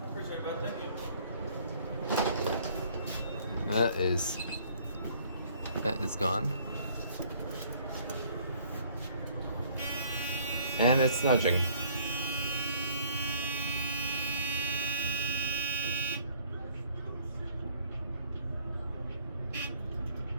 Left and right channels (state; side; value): inverted; both; correlation -0.57